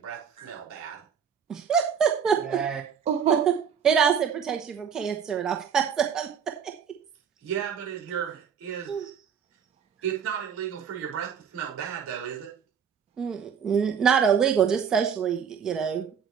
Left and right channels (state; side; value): quieter; left; 7.4 dB